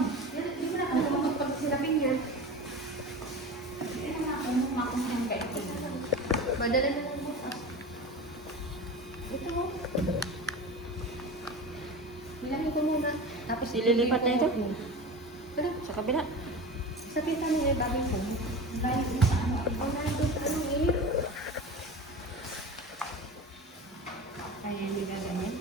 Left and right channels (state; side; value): normal; both; correlation 0.30